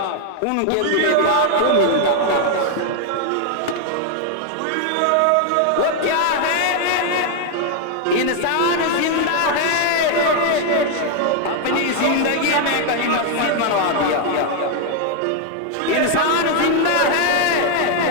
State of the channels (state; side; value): different; both; correlation 0.00